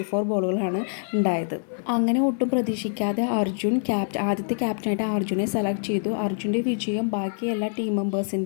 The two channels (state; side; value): silent; right; 56 dB below the other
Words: ബോളുകളാണ് ഉണ്ടായത്. അങ്ങനെ ഒട്ടും പ്രതീക്ഷിക്കാതെ അർജുൻ ആദ്യത്തെ ക്യാപ്റ്റനായിട്ട് അർജുനെ സെലക്ട് ചെയ്തു. അർജുൻ്റെ വിജയം ബാക്കി എല്ലാ ടീം